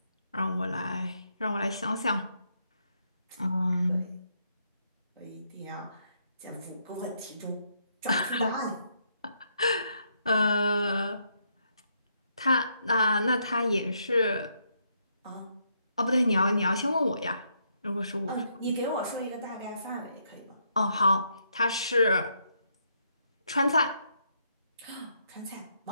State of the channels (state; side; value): inverted; both; correlation -0.76